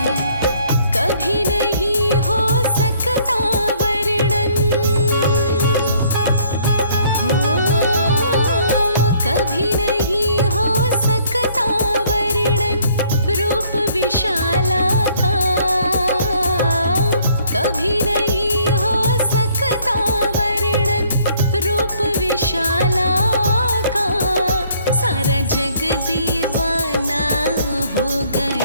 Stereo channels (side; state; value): both; inverted; correlation -0.62